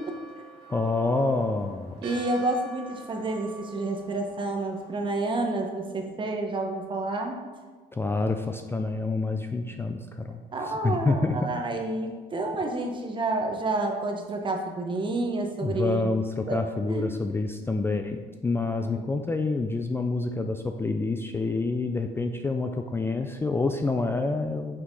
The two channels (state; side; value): normal; both; correlation 0.70